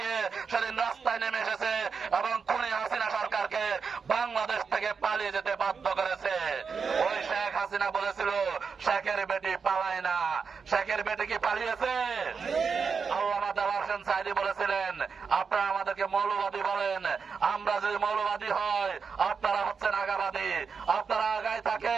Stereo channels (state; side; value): quieter; left; 5.6 dB